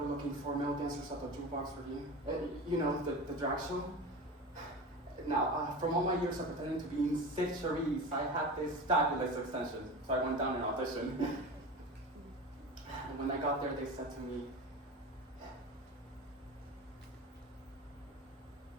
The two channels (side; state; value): both; normal; correlation 0.29